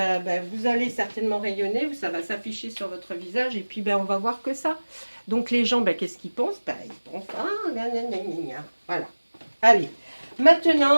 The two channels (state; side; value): inverted; both; correlation -1.00